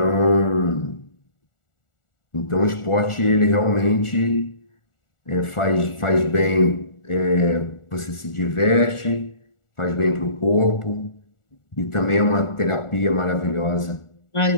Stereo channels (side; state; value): right; late; 1.4 ms